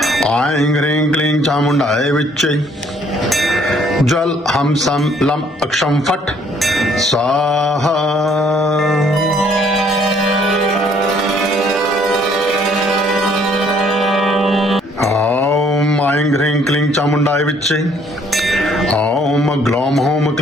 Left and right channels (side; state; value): both; normal; correlation 0.63